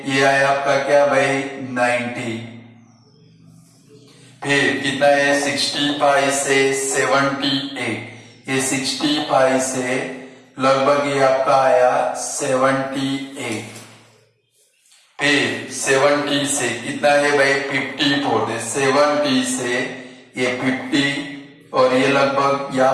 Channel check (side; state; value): both; identical; correlation 1.00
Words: ये आया आपका क्या भाई 90, फिर कितना है 65 से 78, ये 65 से लगभग ये आपका आया 78, फिर 70 से कितना है भाई 54, 70 से ये 50 और ये लगभग